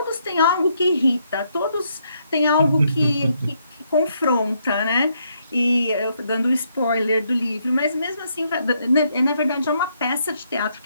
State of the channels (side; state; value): both; inverted; correlation -0.74